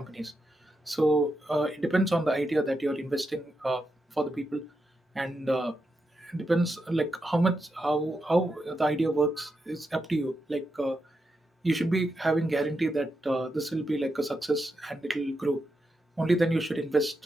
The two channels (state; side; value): normal; both; correlation 0.85